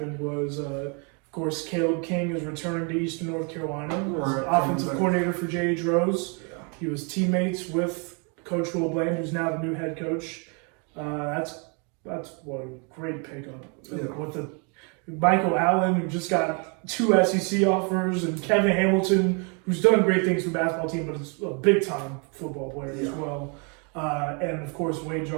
was, of course, Caleb King is returning to Eastern North Carolina as offensive coordinator for J.H. Rose. Yeah. He was teammates with Coach Will Bland, who's now the new head coach. That's what a great pickup. Yeah. With the Michael Allen, who just got 2 SEC offers, and Kevin Hamilton, who's done great things for the basketball team, but is a big-time football player as well. And, of course, Wade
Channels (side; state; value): left; quieter; 35.5 dB